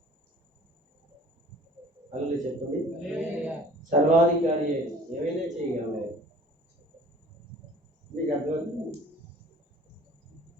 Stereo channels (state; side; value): normal; both; correlation 0.49